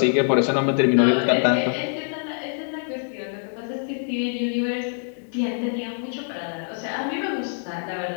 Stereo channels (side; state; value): right; silent; digital silence